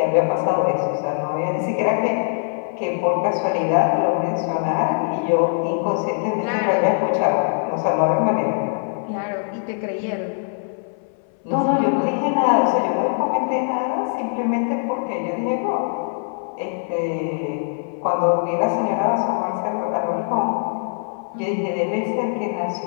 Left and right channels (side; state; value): right; silent; 60 dB below the other